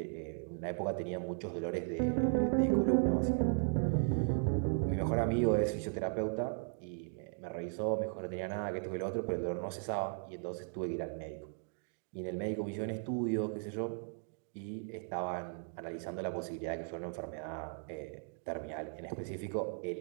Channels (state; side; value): silent; left; 53 dB below the other